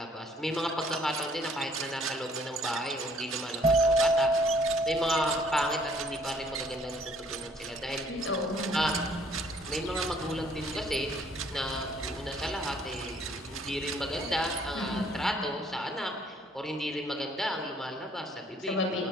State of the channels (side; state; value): both; normal; correlation 0.62